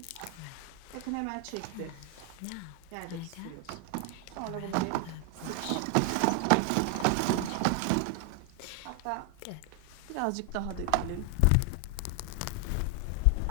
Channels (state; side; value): different; both; correlation 0.00